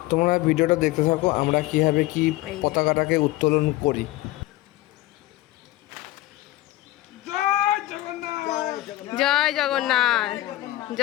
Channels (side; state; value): right; quieter; 16.8 dB